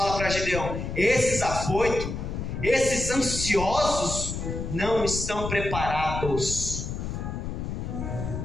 para Gideão: esses afoitos, esses ansiosos não estão preparados.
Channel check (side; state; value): left; noise; rumble, 5 dB below the sound